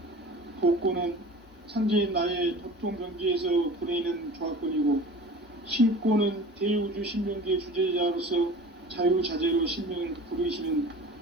복권은 상제인 나의 도통 경지에서 보내는 조합권이고, 신권은 대우주 신명기의 주제자로서 자유자재로 신명을 부르시는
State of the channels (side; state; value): both; normal; correlation 0.40